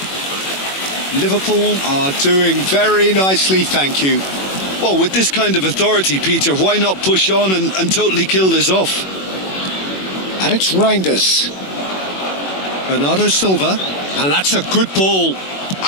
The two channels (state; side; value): late; right; 21 ms